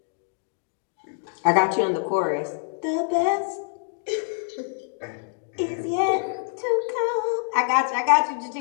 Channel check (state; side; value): silent; right; digital silence